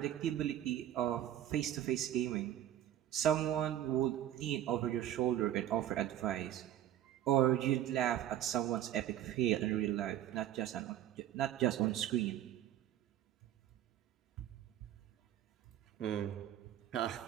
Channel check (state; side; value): quieter; left; 11.9 dB